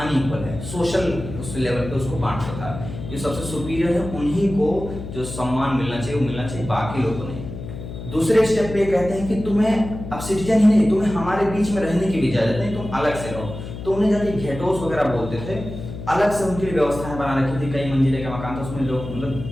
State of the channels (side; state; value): left; noise; hum, 9 dB below the sound